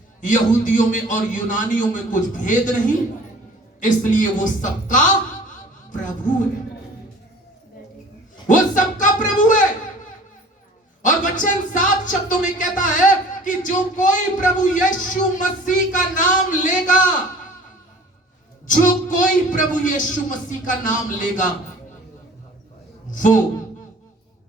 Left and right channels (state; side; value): normal; both; correlation 0.46